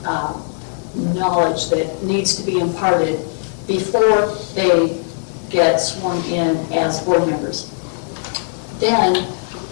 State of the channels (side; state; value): right; silent; digital silence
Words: knowledge that needs to be imparted before they get sworn in as board members. Then,